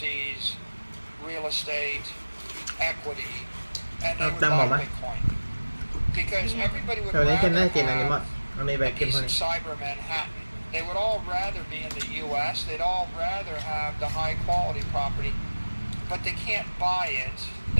real estate, equity, and they would buy Bitcoin. Because everybody would rather have a piece of cyber Manhattan. They would all rather be in the U.S. They'd all rather have the high quality property, but they can't buy it.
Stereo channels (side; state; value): both; inverted; correlation -1.00